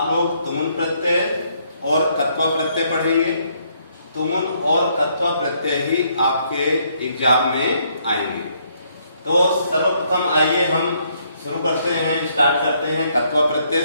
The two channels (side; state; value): both; inverted; correlation -0.70